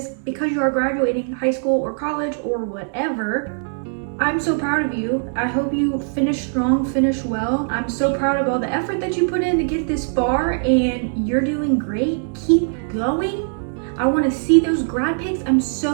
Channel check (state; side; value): silent; left; digital silence